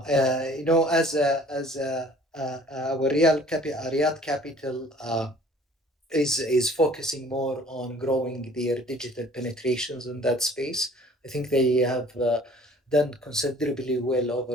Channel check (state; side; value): normal; both; correlation 0.52